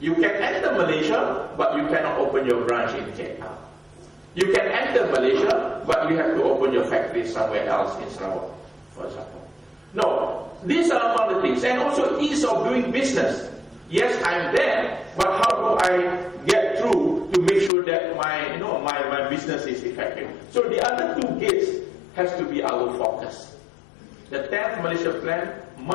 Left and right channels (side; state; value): right; drops out; at 17.7 s